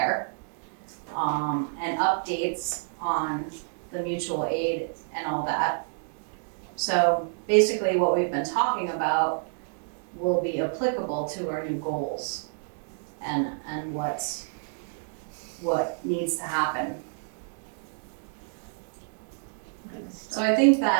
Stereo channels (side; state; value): left; silent; digital silence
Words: and updates on the mutual aid and all that. So basically what we've been talking about will be applicable to our new goals and what needs to happen. So I think